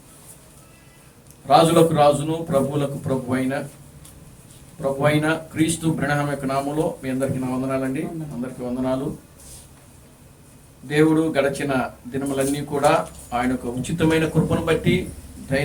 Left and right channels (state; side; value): identical; both; correlation 1.00